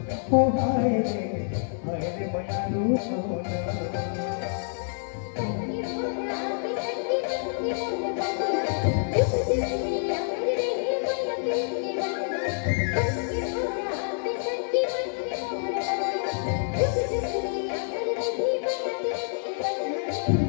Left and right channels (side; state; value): right; silent; digital silence